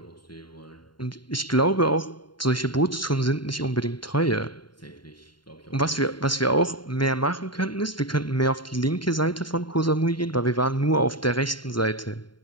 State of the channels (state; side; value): late; right; 0.72 ms